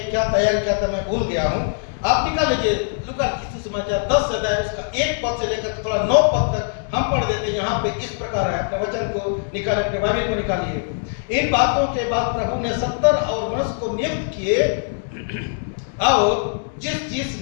क्या तैयार किया था मैं भूल गया हूँ। आप निकाल लीजिए लूका के सुसमाचार 10 अध्याय, उसका 1 पद से लेकर थोड़ा 9 पद तक हम पढ़ देते हैं। यहाँ पे इस प्रकार है, अपने वचन को निकाल, अपने बाइबल को निकालिए। इन बातों के बाद प्रभु ने 70 और मनुष्य को नियुक्त किए, और जिस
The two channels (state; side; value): silent; right; 64 dB below the other